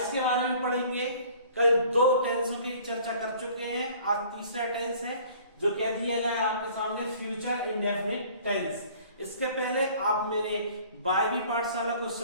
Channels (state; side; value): inverted; both; correlation -0.52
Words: के बारे में पढ़ेंगे। कल दो टेंसों की चर्चा कर चुके हैं, आज तीसरा टेंस है जो कह दिया गया है आपके सामने फ्यूचर इंडेफिनिट टेंस। इसके पहले आप मेरे वायवी पाठशाला को